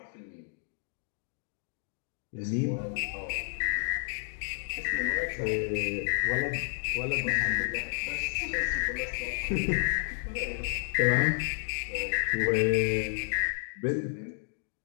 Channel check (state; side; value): silent; right; 57 dB below the other